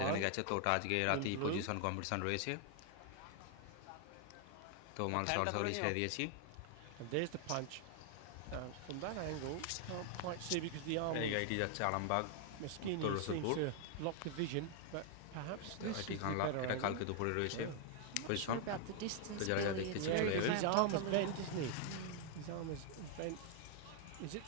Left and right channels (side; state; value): both; different; correlation 0.00